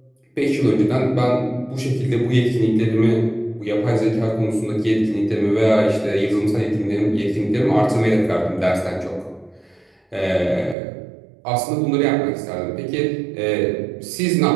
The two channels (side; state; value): left; drops out; at 10.8 s